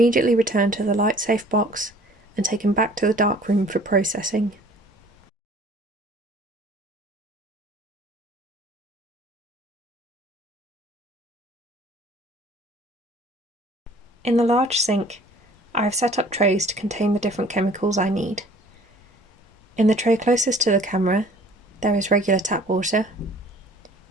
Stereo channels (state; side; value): normal; both; correlation 0.52